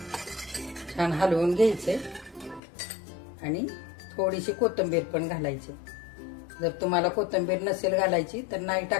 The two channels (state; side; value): drops out; right; at 2.6 s